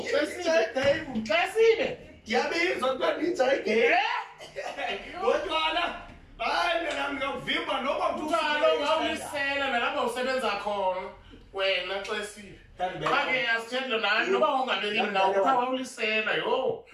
Xesibe. Ngiyabizwa kuthiwa nitha igame. Kodwana hayi mina ngiyakuvimba noma Kaloku awulisela nalapha usebenza khona wena xesibe. Ake asithethe nani noba ungabeli ndawo kuthiwa wawulisela yo.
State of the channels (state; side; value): identical; both; correlation 1.00